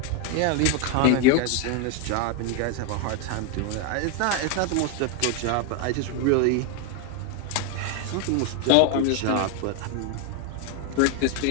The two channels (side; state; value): both; different; correlation 0.01